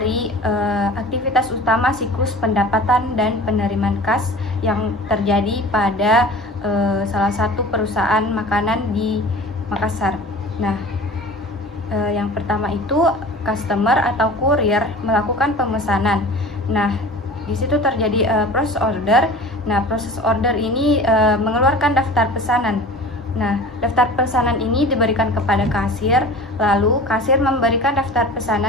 aktivitas utama siklus pendapatan dan penerimaan kas yang terjadi pada salah satu perusahaan makanan di Makassar. Nah, yang pertama itu customer atau kurir melakukan pemesanan. Nah, di situ terjadi proses order. Nah, proses order ini mengeluarkan daftar pesanan. Nah, daftar pesanan ini diberikan kepada kasir, lalu kasir memberikan daftar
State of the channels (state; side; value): normal; both; correlation 0.39